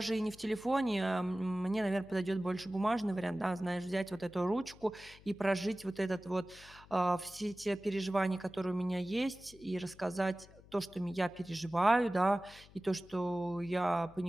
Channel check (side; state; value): left; noise; hum, 23 dB below the sound